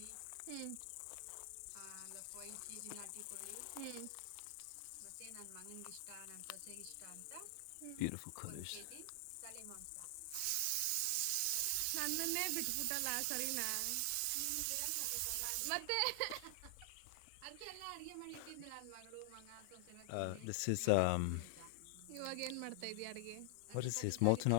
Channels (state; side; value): different; both; correlation 0.00